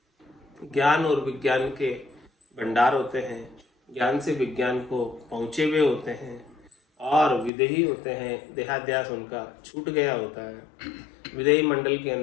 ज्ञान और विज्ञान के भंडार होते हैं, ज्ञान से विज्ञान को पहुंचे हुए होते हैं। और विदेही होते हैं, देहाध्यास उनका छूट गया होता है, विदेही मंडल के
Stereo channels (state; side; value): drops out; right; at 7.5 s